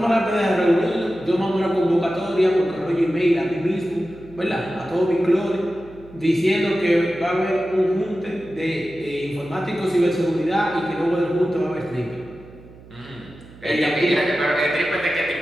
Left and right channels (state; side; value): noise; right; hum, 21 dB below the sound